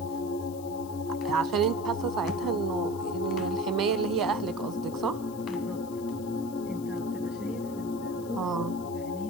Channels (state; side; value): noise; left; hiss, 20 dB below the sound